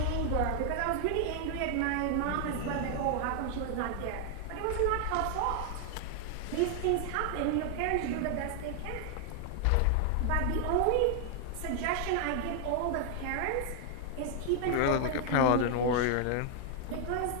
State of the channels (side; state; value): both; different; correlation 0.00